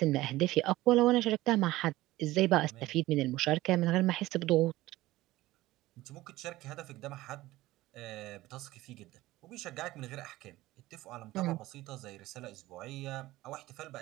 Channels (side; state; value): left; quieter; 17.5 dB